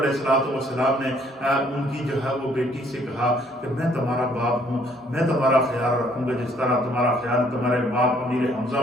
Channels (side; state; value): both; normal; correlation 0.63